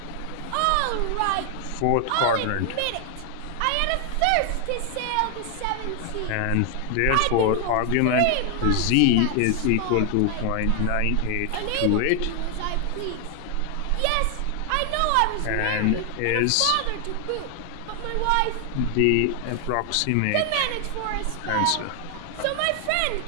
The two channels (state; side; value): different; both; correlation 0.00